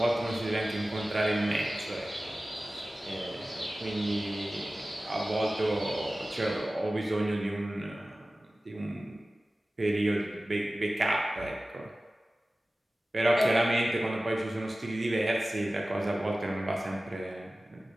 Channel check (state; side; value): normal; both; correlation 0.96